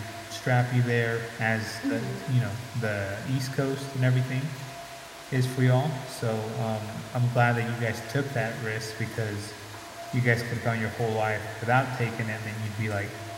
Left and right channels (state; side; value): identical; both; correlation 1.00